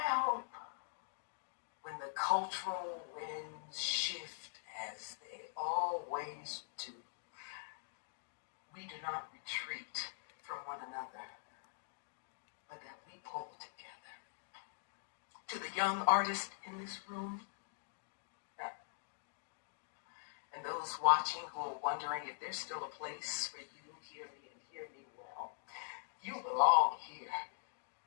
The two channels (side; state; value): right; silent; digital silence